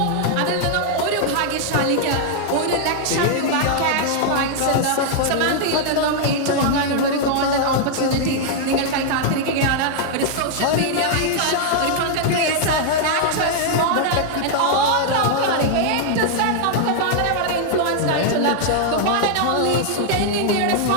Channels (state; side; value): different; both; correlation -0.01